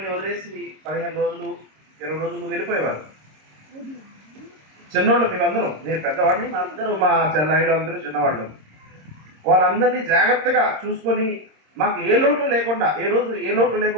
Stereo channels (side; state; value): left; late; 26 ms